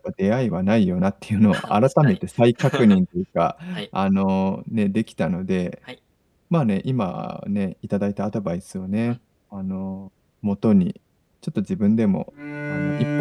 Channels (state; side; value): identical; both; correlation 1.00